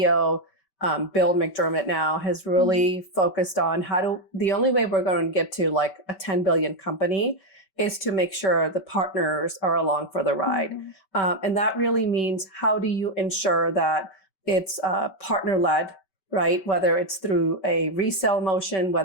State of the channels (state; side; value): late; right; 5.2 ms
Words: Bill McDermott now has really focused on the only way we're going to get to like a 10 billion company is to make sure the partners are along for the ride. And that really means, how do you ensure that it's partner-led, right? Whether it's through a resale motion,